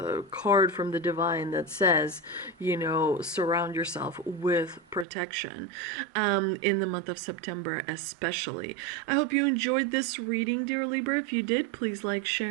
card from the divine that says, surround yourself with protection in the month of September especially. I hope you enjoyed this reading, dear Libra. If you did, please like,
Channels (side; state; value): left; drops out; at 5.1 s